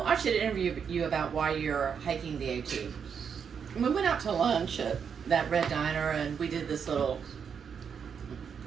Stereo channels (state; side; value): quieter; left; 6.9 dB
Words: I should interview you about why you're hiking the AT." And we went out to lunch at that Red Diner, and we did this little